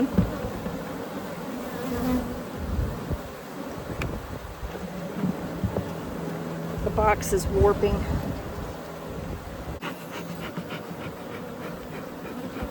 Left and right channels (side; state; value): both; identical; correlation 1.00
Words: The box is warping.